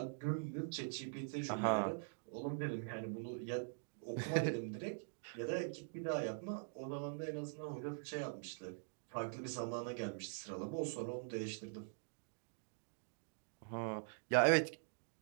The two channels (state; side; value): silent; left; digital silence